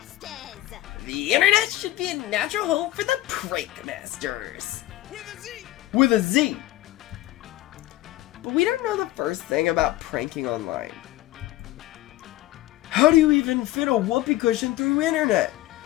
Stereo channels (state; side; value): quieter; right; 16.1 dB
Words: The internet should be a natural home for the Prank Masters. With a Z! With a Z. But we don't know the first thing about pranking online. How do you even fit a whoopee cushion through internet?